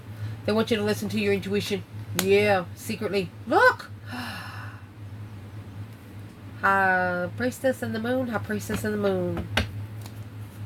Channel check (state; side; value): identical; both; correlation 1.00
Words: They want you to listen to your intuition. Yeah, secretly. Look! High Priestess and the Moon, High Priestess and the Moon.